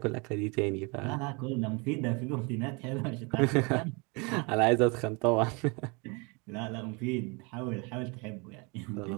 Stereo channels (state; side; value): quieter; left; 30.0 dB